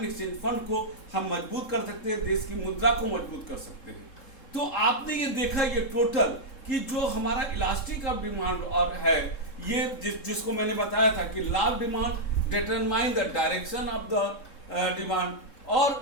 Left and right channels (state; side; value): late; right; 3.7 ms